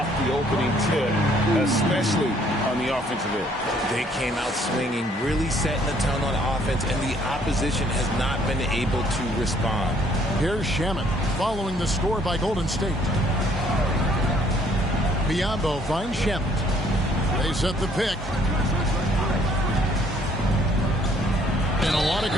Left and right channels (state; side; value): normal; both; correlation 0.63